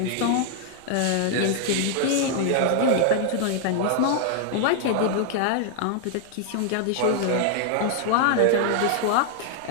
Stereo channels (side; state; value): both; different; correlation 0.00